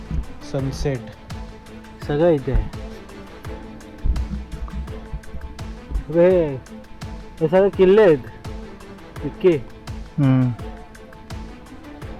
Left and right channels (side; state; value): both; identical; correlation 1.00